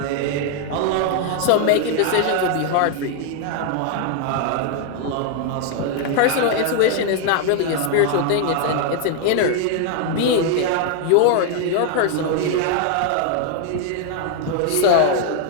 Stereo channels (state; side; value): different; both; correlation 0.00